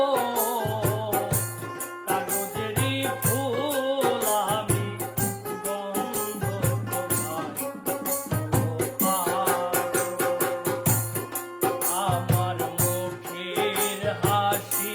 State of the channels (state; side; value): identical; both; correlation 1.00